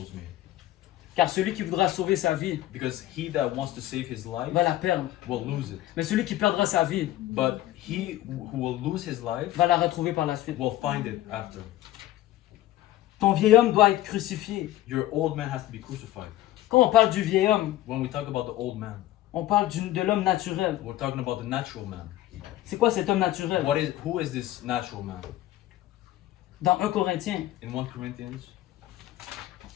me. Car celui qui voudra sauver sa vie Because he that wants to save his life va la perdre. will lose it. Mais celui qui perdra sa vie But he who will lose his life va la retrouver par la suite. will find it after. Ton vieil homme doit être crucifié. Your old man has to be crucified. Quand on parle du vieil homme, When we talk about the old man, on parle de l'homme naturel. we're talking about the natural man. C'est quoi cet homme naturel? Who is this natural man? Dans 1 Corinthiens, In 1 Corinthians,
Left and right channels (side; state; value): right; quieter; 14.7 dB